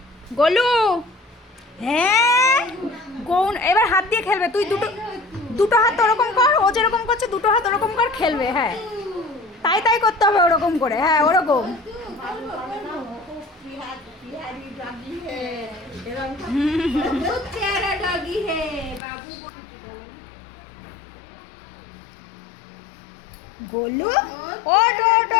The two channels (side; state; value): right; drops out; at 19.0 s